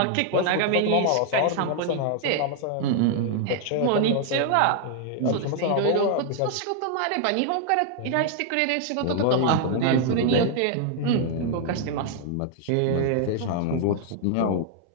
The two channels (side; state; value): both; different; correlation 0.00